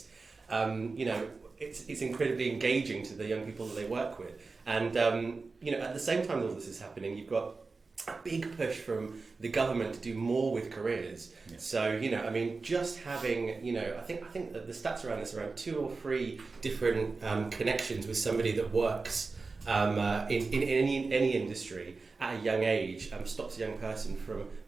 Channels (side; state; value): left; quieter; 4.1 dB